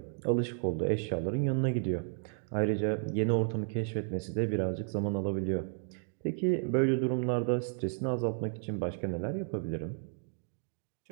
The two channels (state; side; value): silent; left; digital silence